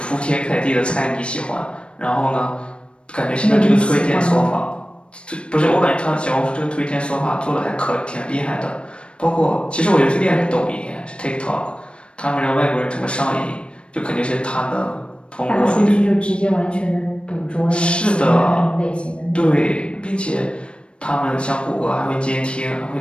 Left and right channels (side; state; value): right; late; 0.057 ms